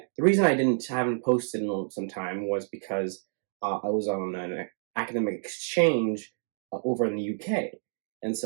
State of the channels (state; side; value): silent; left; digital silence